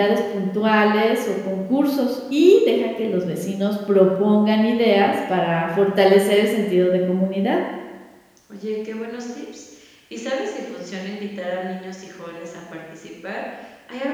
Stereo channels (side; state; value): both; identical; correlation 1.00